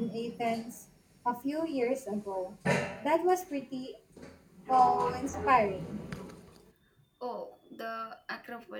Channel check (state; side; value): identical; both; correlation 1.00